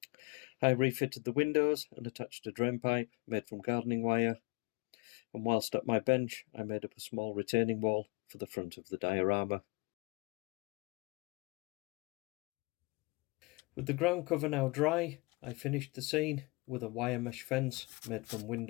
I refitted the windows and attached a drain pipe made from gardening wire, and whilst at my bench I made up a small retaining wall for the front of the diorama. With the ground cover now dry, I finished the scene with a wire mesh fence made from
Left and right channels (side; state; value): right; quieter; 27.1 dB